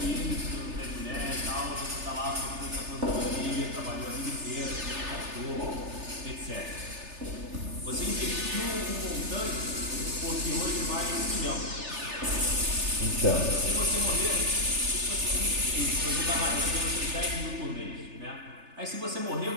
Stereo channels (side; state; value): left; late; 3.3 ms